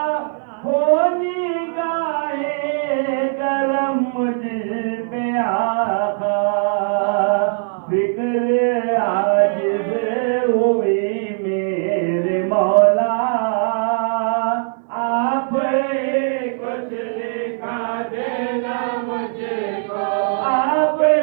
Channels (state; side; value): silent; left; 58 dB below the other